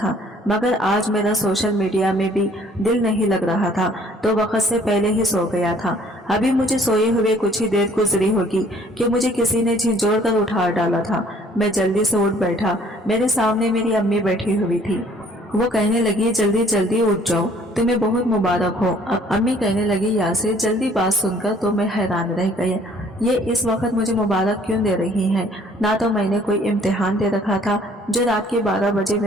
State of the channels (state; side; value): normal; both; correlation 0.58